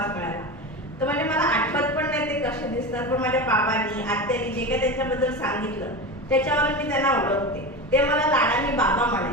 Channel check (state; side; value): normal; both; correlation 0.25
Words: मिळाला. तर म्हणजे मला आठवत पण नाही ते कसे दिसतात, पण माझ्या बाबांनी आत्यानी जे काही त्यांच्याबद्दल सांगितलं त्याच्यावर मी त्यांना ओळखते. ते मला लाडाने बाबा